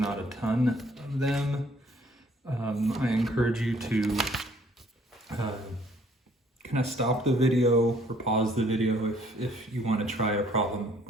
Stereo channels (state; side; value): normal; both; correlation 0.61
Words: a ton of them. I encourage you to kind of stop the video or pause the video if you want to try a problem